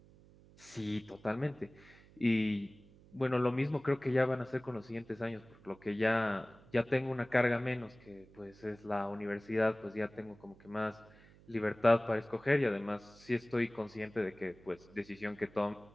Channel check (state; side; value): noise; right; hum, 24 dB below the sound